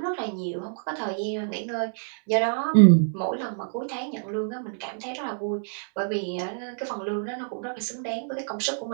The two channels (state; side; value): silent; left; digital silence